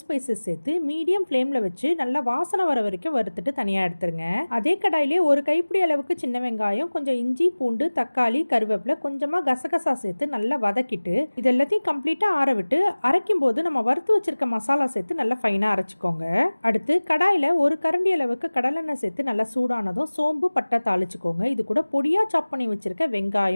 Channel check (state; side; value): inverted; both; correlation -1.00